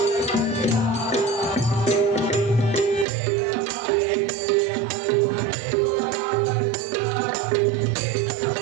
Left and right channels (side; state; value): left; drops out; at 3.1 s